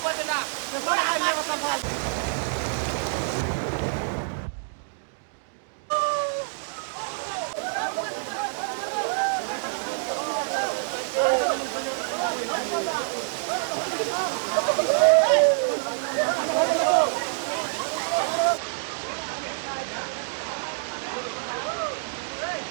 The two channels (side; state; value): left; silent; digital silence